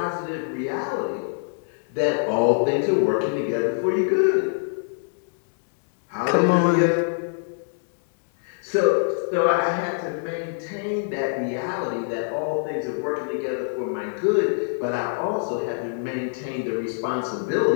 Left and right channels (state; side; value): silent; right; digital silence